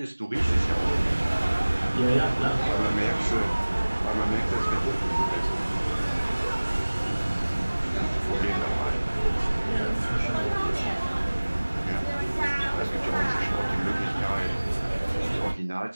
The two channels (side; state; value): both; inverted; correlation -1.00